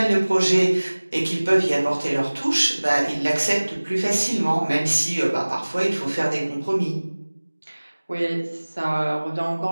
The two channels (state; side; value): inverted; both; correlation -1.00